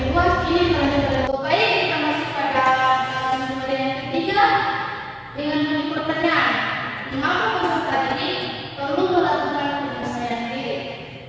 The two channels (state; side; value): identical; both; correlation 1.00